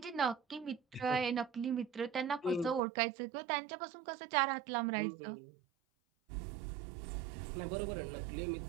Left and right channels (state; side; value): drops out; left; at 2.8 s